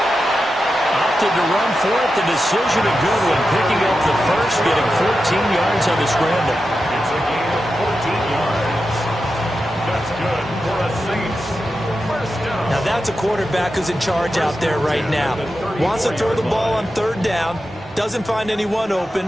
Opted to run for it. The decision a good one. Picking up the first, getting 14 yards on the scramble. It's a gain of 14 yards. That's good for a Saints first down. Now that's a quarterback who's in charge out there right now. Wants to throw the ball on 3rd down. Doesn't find anyone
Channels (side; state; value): both; normal; correlation 0.90